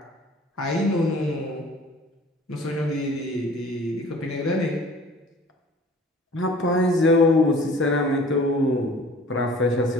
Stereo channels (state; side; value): normal; both; correlation 0.48